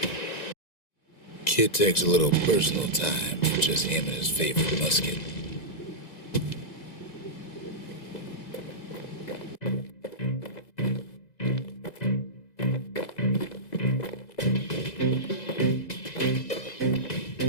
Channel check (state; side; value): late; right; 2.0 ms